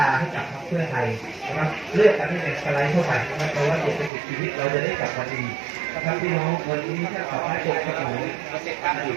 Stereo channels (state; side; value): drops out; left; at 4.1 s